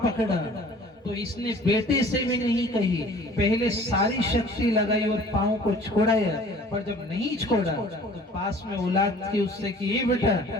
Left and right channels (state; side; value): normal; both; correlation 0.49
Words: पकड़ा तो इसने बेटे से भी नहीं कही, पहले सारी शक्ति लगाई और पांव को छोड़ाया, पर जब नहीं छोड़ा तो पास में औलाद की उससे कि ये बेटा